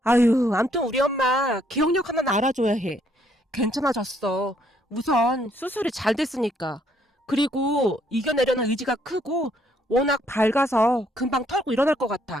아유, 암튼 우리 엄마 기억력 하나는 알아줘야 해. 괜찮아졌어. 우선 수술이 잘 됐으니까. 그리고 이겨내려는 의지가 크고 워낙 밝아서 금방 털고 일어날 것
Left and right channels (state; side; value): normal; both; correlation 0.69